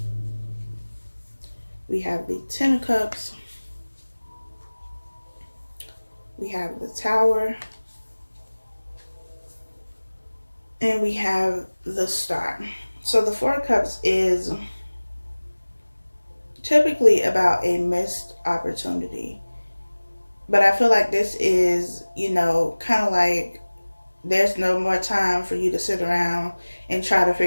We have the 10 of Cups. We have the Tower. And we have the Star. So the 4 of Cups is typically about a missed opportunity. But I feel like this is you know, kind of like there's no more time for you to sit around and try to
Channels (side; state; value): both; inverted; correlation -1.00